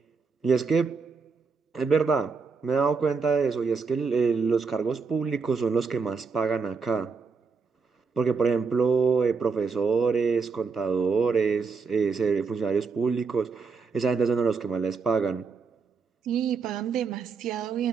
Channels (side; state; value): left; quieter; 5.0 dB